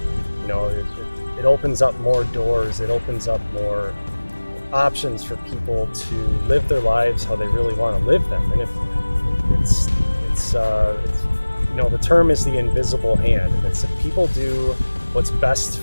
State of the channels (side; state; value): both; inverted; correlation -1.00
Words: it opens up more doors. It opens up more options for people to live their lives how they really want to live them. And if the term is the invisible hand, and it's if people do what's best